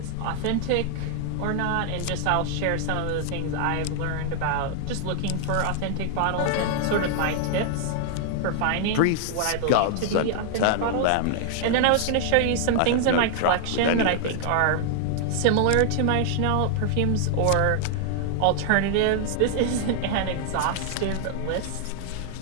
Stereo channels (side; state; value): both; different; correlation 0.00